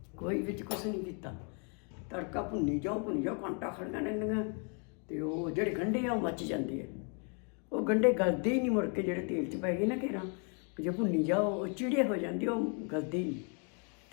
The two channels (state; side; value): quieter; right; 38.5 dB